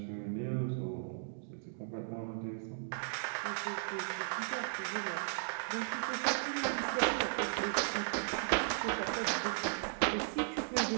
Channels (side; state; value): left; silent; digital silence